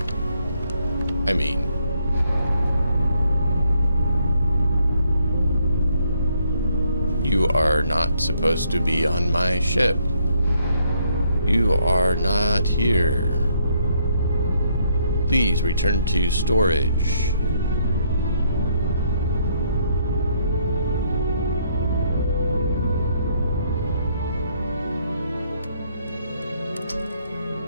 I mean... You are not supposed to be on my ship. You are not here. Please return to storage.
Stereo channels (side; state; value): both; inverted; correlation -0.71